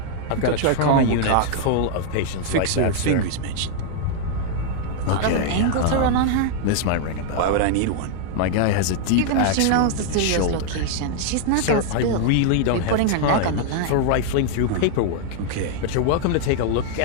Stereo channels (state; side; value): different; both; correlation 0.00